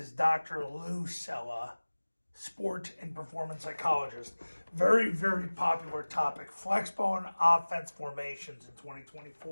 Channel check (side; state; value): both; inverted; correlation -1.00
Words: Dr. Lou Sella, sports and performance psychologist. Very, very popular topic. Flexbone offense formations in